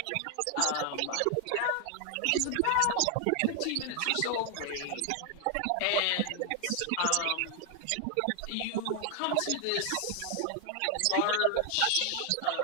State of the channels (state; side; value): different; both; correlation 0.00